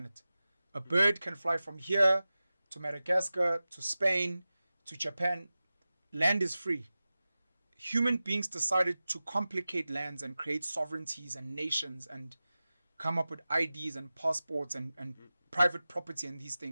A bird can fly from here to Madagascar, to Spain, to Japan. Land is free. Human beings decided to complicate lands and create sovereignties and nations and come up with IDs and passports and private property and these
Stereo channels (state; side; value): inverted; both; correlation -0.96